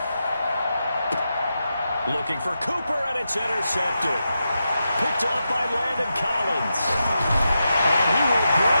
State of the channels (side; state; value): both; inverted; correlation -0.88